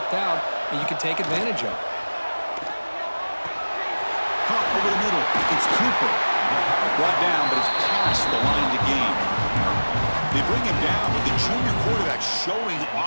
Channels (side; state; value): both; inverted; correlation -1.00